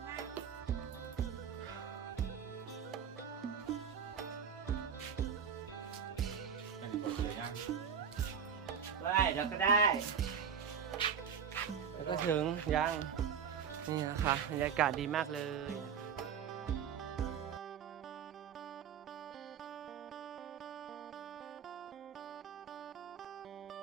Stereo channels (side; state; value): left; quieter; 7.5 dB